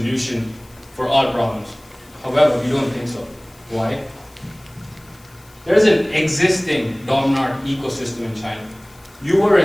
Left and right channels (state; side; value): noise; left; hiss, 27 dB below the sound